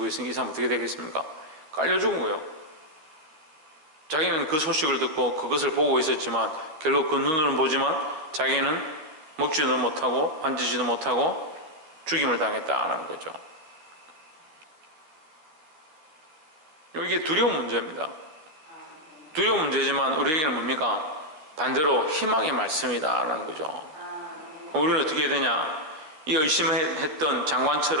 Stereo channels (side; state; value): left; late; 13 ms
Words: 있으니 이 사람 어떻게 되겠습니까? 깔려 죽은 거예요. 자기는 그 소식을 듣고 그것을 보고 있었지만 결국 그 눈으로는 보지만 자기는 먹지도 못하고 앉지도 못하고 죽임을 당했다는 거죠. 이게 두려운 문제입니다. 두려운 문제지만 우리에게는 뭡니까? 반대로 희망의 말씀이다라는 거죠. 우리는 어떻게 해야 되냐? 이 의심했던